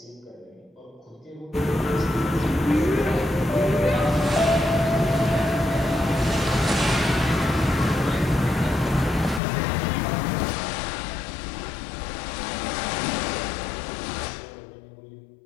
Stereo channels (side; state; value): right; drops out; at 9.4 s